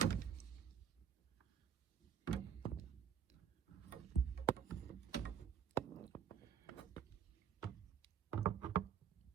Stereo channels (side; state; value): left; quieter; 8.3 dB